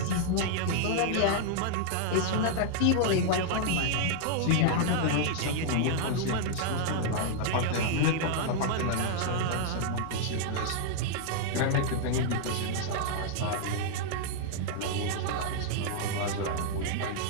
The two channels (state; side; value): different; both; correlation -0.01